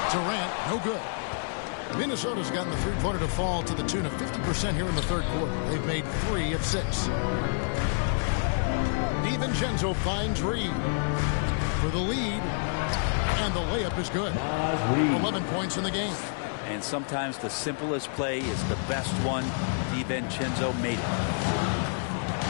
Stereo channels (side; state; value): right; silent; digital silence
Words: Durant, no good. Minnesota's gotten the three-pointer to fall to the tune of 50% here in the third quarter. They've made 3 of 6. DiVincenzo finds Reed. for the lead. And the layup is good. 11 points in the game. And sometimes the simplest play is the best one. DiVincenzo made it.